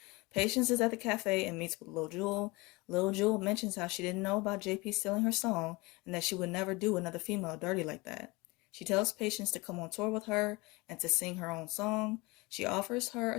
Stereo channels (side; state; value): right; quieter; 23.7 dB